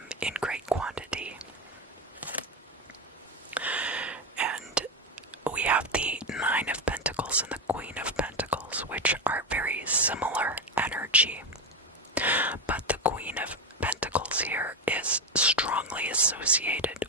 in great quantity. And we have the Nine of Pentacles and the Queen of Pentacles, which are very similar energy. But the Queen of Pentacles here is strongly associated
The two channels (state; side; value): normal; both; correlation 0.14